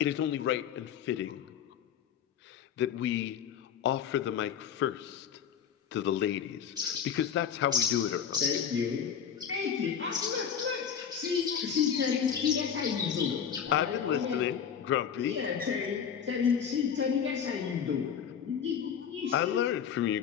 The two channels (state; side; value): quieter; right; 8.0 dB